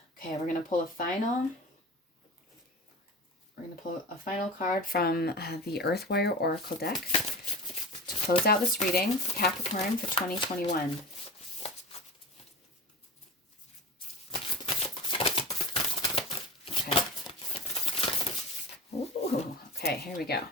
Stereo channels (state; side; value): normal; both; correlation 0.32